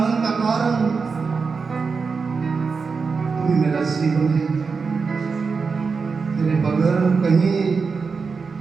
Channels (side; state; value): left; quieter; 5.0 dB